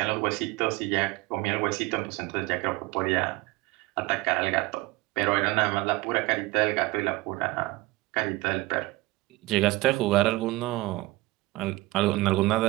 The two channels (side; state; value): left; quieter; 20.4 dB